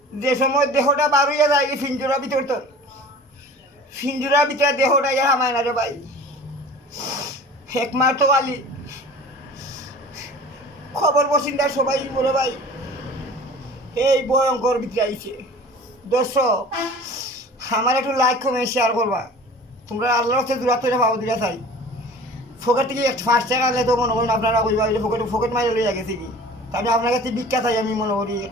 যে সময় দেহটা বার হইয়া যায় এই ফিঞ্জুরার ভিতর তো ফিঞ্জুরার ভিতরে দেহটা ইয়া হামায় না রে ভাই একমার তো আলি খবর বসিন্দার সবাই বলে ভাই এই ভয়ঙ্কর ভিতরে আইছে দর্শক আমার একটু লাইক কমে শেয়ার করবা তোমরা আল্লাহর হচ্ছে দূরাত্ম ভাবো দিলা চাই ফোকেট থেকে ফার্স্ট টাকা আনলে তো মনে করেন আপনারা কইবা ফোকেট ফোকেট মাইলে লইয়া গেছে কি তাহলে আপনার কাছে বিখ্যাত চাই আমি মনে করি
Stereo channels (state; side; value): normal; both; correlation 0.42